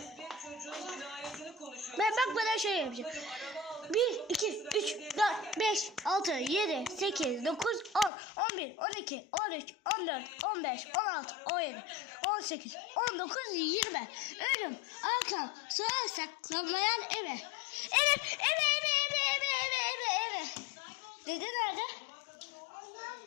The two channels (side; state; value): right; drops out; at 8.1 s